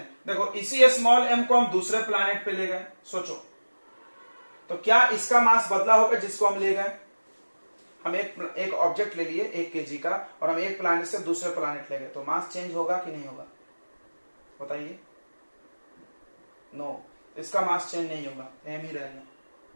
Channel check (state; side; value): inverted; both; correlation -1.00